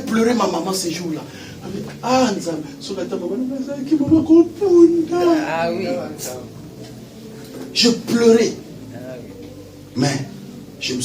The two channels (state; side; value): identical; both; correlation 1.00